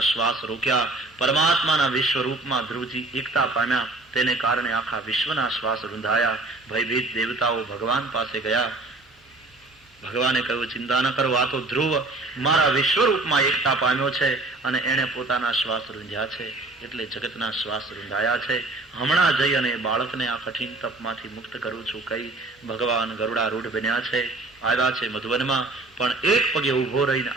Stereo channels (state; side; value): quieter; left; 3.0 dB